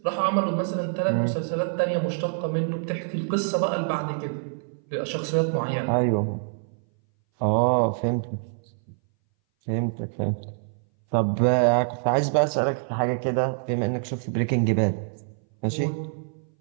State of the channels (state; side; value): silent; left; 59 dB below the other